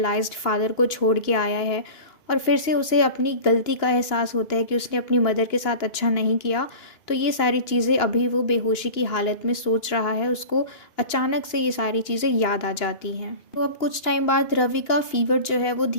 फादर को छोड़ के आया है और फिर से उसे अपनी गलती का एहसास होता है कि उसने अपनी मदर के साथ अच्छा नहीं किया। तो ये सारी चीज़ें अभी वो बेहोशी की हालत में सोच रहा है, उसको अचानक से ये सारी चीज़ें याद आ जाती हैं। तो अब कुछ टाइम बाद रवि का फीवर जो है वो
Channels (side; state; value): right; late; 2.8 ms